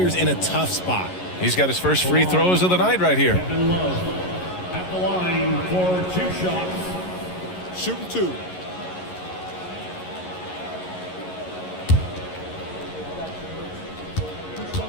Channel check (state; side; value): late; right; 11 ms